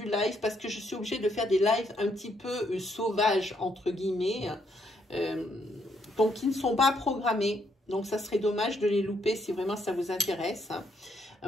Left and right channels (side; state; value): both; normal; correlation 0.74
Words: live parce que je suis obligée de faire des lives un petit peu sauvages, entre guillemets. Donc, qui ne sont pas programmés. Donc, ça serait dommage de les louper si vraiment ça vous intéresse.